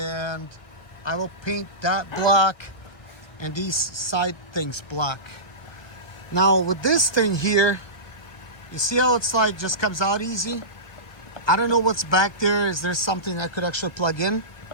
I will paint that black and these side things black. Now with this thing here, you see how it's like just comes out easy? I don't know what's back there. Is there something I could actually plug in?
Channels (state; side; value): late; right; 1.6 ms